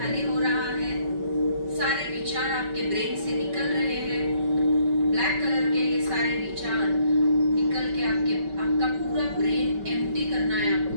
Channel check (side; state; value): left; late; 5.2 ms